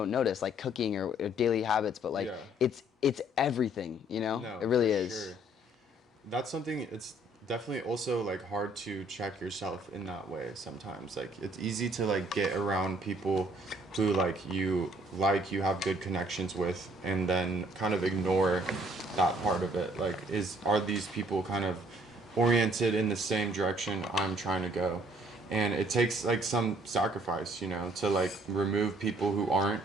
notice, like cooking or daily habits. But like Yeah. it's everything. No, It really for is. sure. That's something. It's definitely also like hard to check yourself in that way sometimes. Like it's easy to like get around people who you have good connections with, and then kind of ignore that part of it. Like are these people kind of oriented in the same direction I'm trying to go? And it takes like some sacrifice, to like remove people who aren't,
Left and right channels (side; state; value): both; normal; correlation 0.61